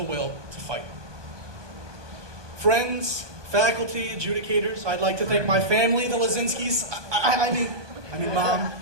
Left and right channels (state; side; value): late; left; 1.2 ms